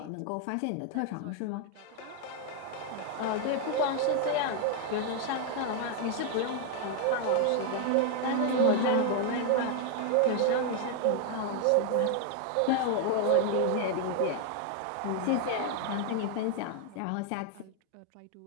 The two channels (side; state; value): both; different; correlation 0.00